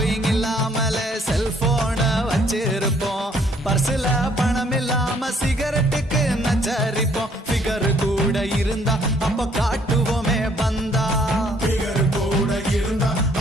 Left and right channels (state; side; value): normal; both; correlation 0.64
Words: இல்லாமல செல்போன வச்சிருப்போம், பர்சுல பணம் இல்லாம சிகரெட்டுக்கு நச்சரிப்போம், ஃபிகர் கூட இருந்தா அப்ப காட்டுவோமே பந்தா, பிகர் கூட இருந்தா